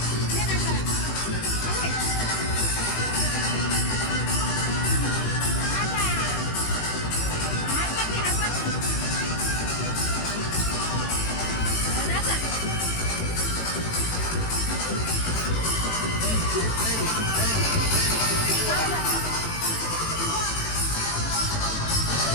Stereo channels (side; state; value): right; late; 18 ms